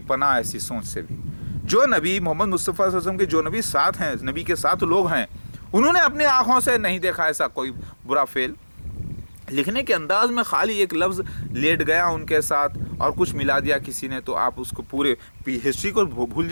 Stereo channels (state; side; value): inverted; both; correlation -1.00